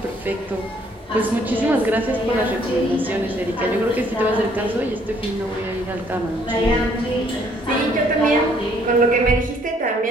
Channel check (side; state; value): both; normal; correlation 0.64